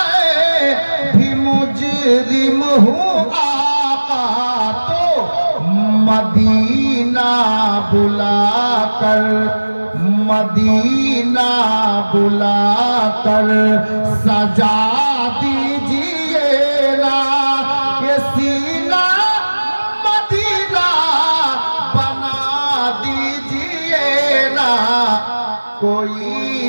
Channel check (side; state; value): both; inverted; correlation -1.00